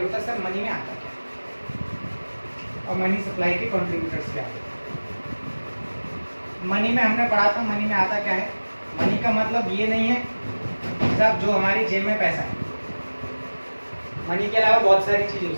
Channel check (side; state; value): both; inverted; correlation -1.00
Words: होता है सर मनी में आता क्या है और मनी सप्लाई के कंट्रीब्यूटर्स क्या है। मनी में हमने पढ़ा था, मनी में आता क्या है। मनी का मतलब ये नहीं है साहब जो हमारी जेब में पैसा है। मनी के अलावा बहुत सारी चीजें हो